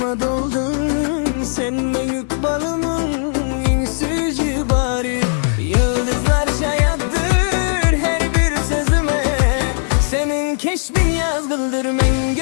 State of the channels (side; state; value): right; silent; 67 dB below the other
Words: doldun, sen büyük balımın en süzü bari. Yıldızlar şayattır her bir sözüme, senin keşfin yazgıldır men